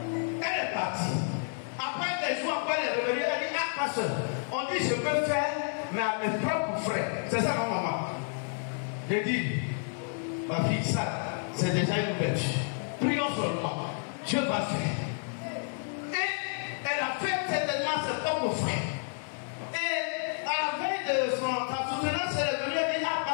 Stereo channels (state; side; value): silent; right; 58 dB below the other